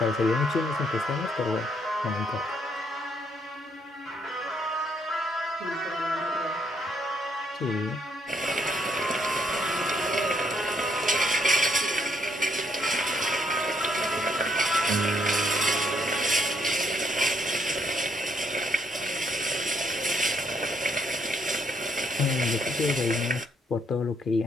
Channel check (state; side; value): normal; both; correlation 0.72